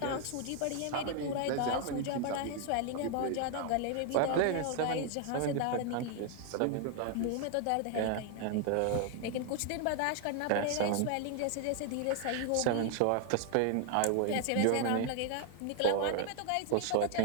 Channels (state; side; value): different; both; correlation 0.00